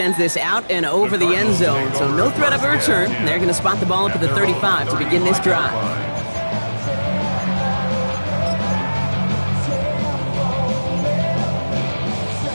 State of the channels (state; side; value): inverted; both; correlation -1.00